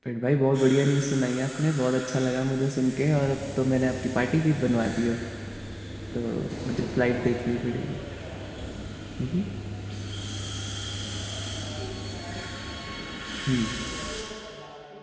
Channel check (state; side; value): identical; both; correlation 1.00